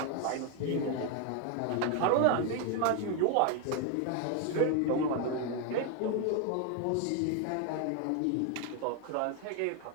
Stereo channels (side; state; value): both; different; correlation 0.01